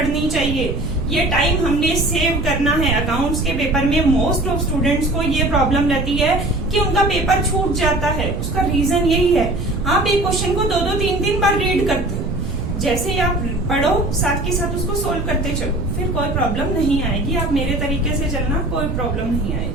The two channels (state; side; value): noise; right; rumble, 4 dB below the sound